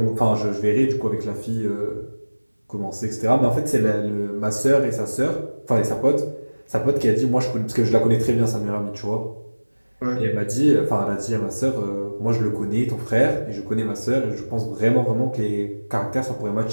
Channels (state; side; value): inverted; both; correlation -1.00